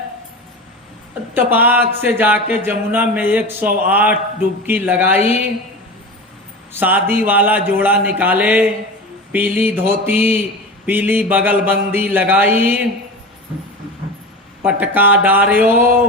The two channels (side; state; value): both; normal; correlation 0.29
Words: तपाक से जाके जमुना में 108 डुबकी लगाई, शादी वाला जोड़ा निकाले, पीली धोती पीली बगलबंदी लगाई, पटका डारियो,